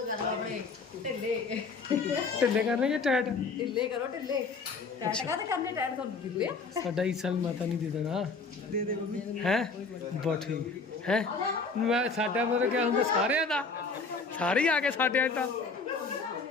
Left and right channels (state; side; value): quieter; right; 4.4 dB